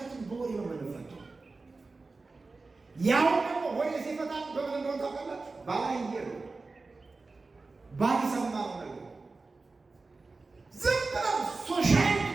በወሬ ነው የምንፈታው። ያው ደግሞ ወሬ ሲፈታ በምን እንደሆነ ታውቃላችሁ? ባላየ ነው ባልሰማው ነገር ዝም ብለው ሶሻል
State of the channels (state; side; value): quieter; left; 3.7 dB